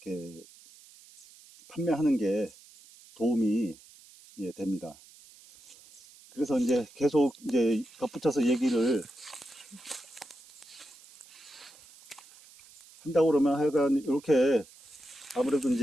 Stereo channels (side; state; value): right; noise; hiss, 23 dB below the sound